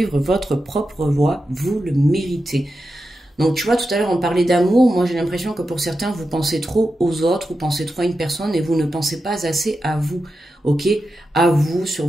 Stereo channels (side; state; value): both; normal; correlation 0.90